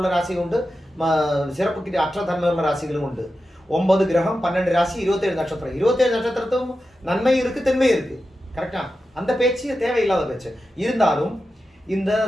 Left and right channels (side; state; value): both; normal; correlation 0.91